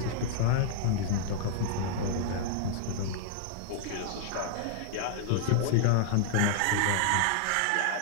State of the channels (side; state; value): both; different; correlation -0.01